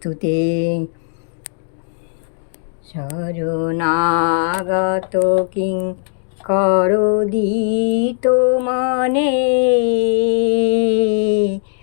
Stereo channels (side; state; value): right; silent; digital silence